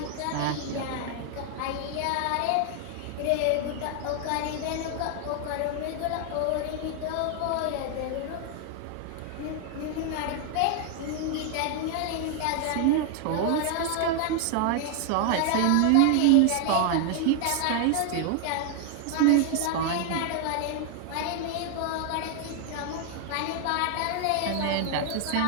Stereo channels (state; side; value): different; both; correlation 0.00